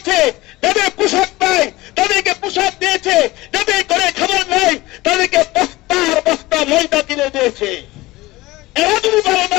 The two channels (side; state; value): right; quieter; 19.6 dB